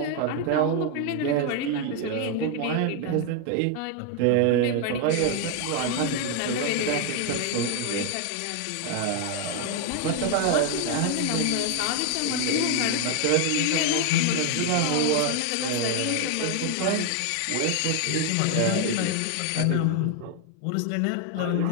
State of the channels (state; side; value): different; both; correlation 0.01